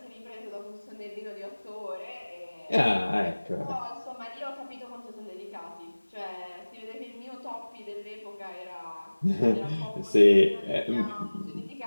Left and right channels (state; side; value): inverted; both; correlation -1.00